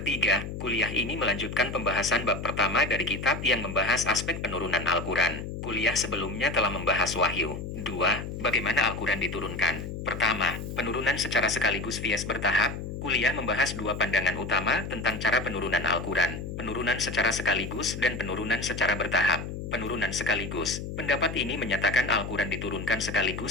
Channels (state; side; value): noise; left; hum, 7 dB below the sound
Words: kuliah ini melanjutkan pembahasan bab pertama dari kitab yang membahas aspek penurunan Al-Quran. Kuliah sebelumnya telah membahas wahyu. 2. Bagaimana Al-Quran diturunkan? Pertama, penurunan secara sekaligus via bertahap. Kuliah membahas dua pandangan utama tentang cara penurunan Al-Quran, penurunan secara sekaligus dan penurunan secara bertahap. Penurunan sekaligus. Pendapat ini menyatakan Al-Quran diturunkan